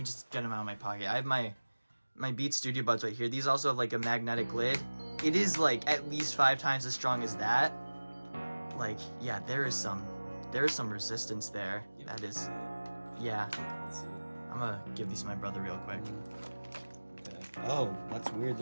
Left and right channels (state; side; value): inverted; both; correlation -1.00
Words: just get them out of my pocket. I have my Beats Studio Buds right here. These also have like a magnetic lid. It is like at least 5 times as strong as that. Like, yeah, there is some resistance there. That is, yeah. Let's see. I'm gonna give these to my brother real quick. Okay. Oh, that's weird.